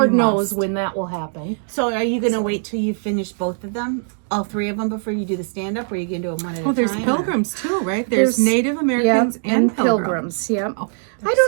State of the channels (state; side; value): silent; left; 60 dB below the other